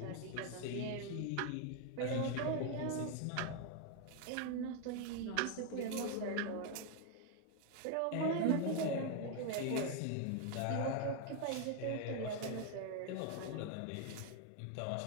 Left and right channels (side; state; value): both; different; correlation 0.01